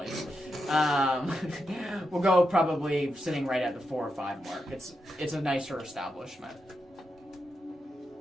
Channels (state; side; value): normal; both; correlation 0.86